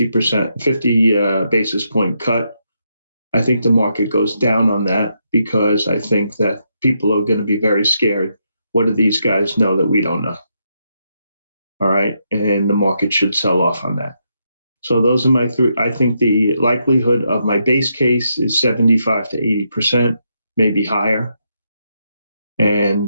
basis point cut. I think the market goes down on that because I think that people are going to be very scared. What do these guys know that we don't know? All right. And the market should sell off on that. So those are my three. I think the likelihood of my base case is 75 to 80%, maybe higher.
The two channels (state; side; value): inverted; both; correlation -0.80